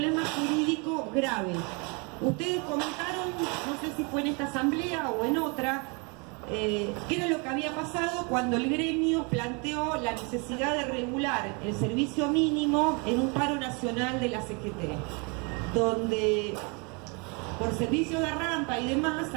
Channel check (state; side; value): quieter; left; 32.3 dB